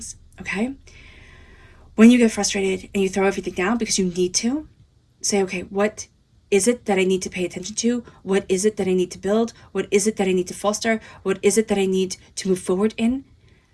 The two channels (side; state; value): both; identical; correlation 1.00